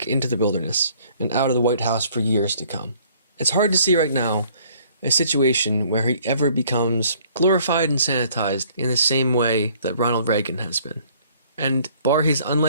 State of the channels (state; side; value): inverted; both; correlation -0.59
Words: into the wilderness and out of the White House for years to come. It's hard to see right now a situation where he ever becomes glorified and sanitized in the same way that Ronald Reagan has been. And bar his